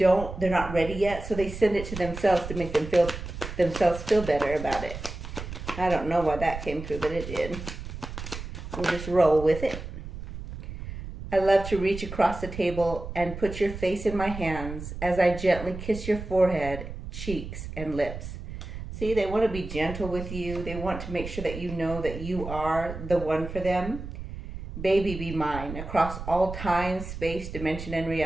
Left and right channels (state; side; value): noise; right; rumble, 9 dB below the sound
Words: not ready yet, so they send it to themselves to make themselves feel better about it. I don't know why that came through, but it did. We'll just roll with it. I love to reach across the table and put your face in my hands as I gently kiss your forehead, cheeks, and lips. See, they want to be gentle with you. They want to make sure that you know that you are the one for them. Baby, be mine, across all time, space, dimension, and